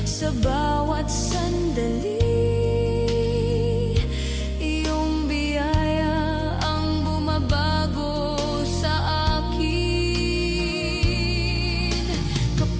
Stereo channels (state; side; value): identical; both; correlation 1.00